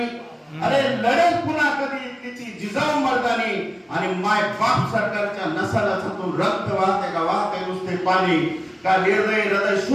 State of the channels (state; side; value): identical; both; correlation 1.00